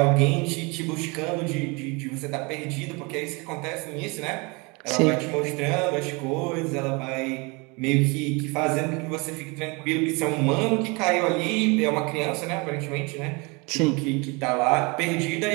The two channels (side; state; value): left; quieter; 28.5 dB